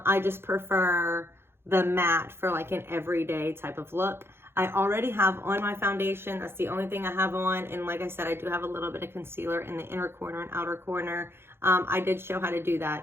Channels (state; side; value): late; left; 0.11 ms